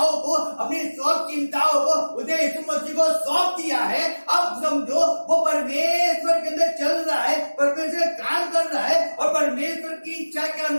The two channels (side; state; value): both; inverted; correlation -1.00